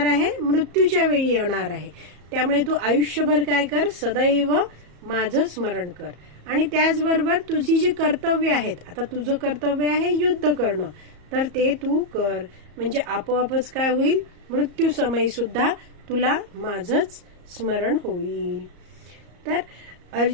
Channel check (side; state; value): left; late; 34 ms